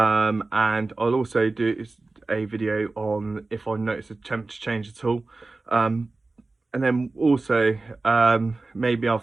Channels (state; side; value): quieter; left; 3.4 dB